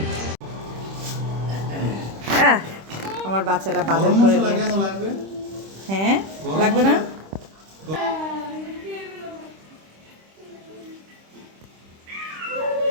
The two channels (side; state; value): left; late; 26 ms